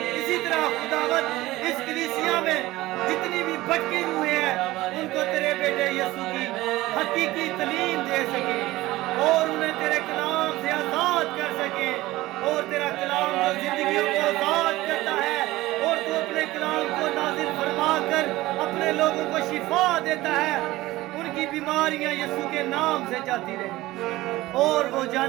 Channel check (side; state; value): left; quieter; 17.9 dB